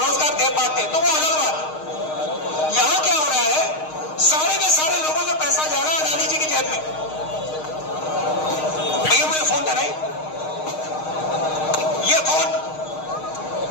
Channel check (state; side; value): late; right; 6.5 ms